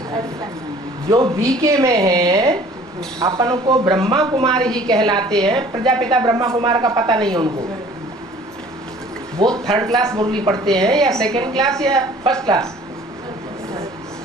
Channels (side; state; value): both; normal; correlation 0.51